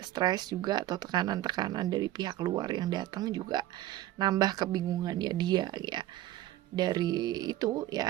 stres juga, atau tekanan-tekanan dari pihak luar yang datang juga nambah kebingungannya dia ya. Dari itu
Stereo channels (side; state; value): left; quieter; 14.5 dB